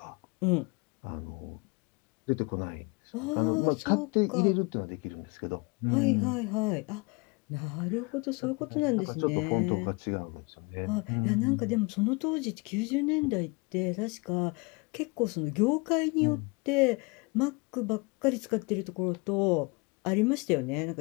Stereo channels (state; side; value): quieter; right; 28.5 dB